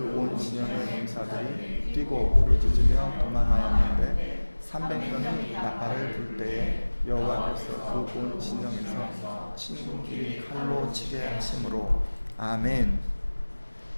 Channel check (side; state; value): both; inverted; correlation -1.00